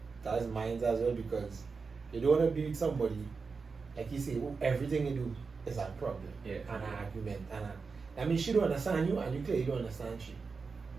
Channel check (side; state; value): left; quieter; 4.8 dB